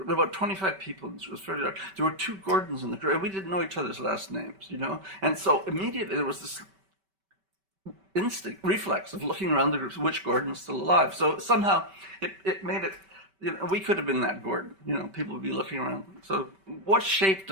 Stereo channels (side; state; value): left; late; 5.2 ms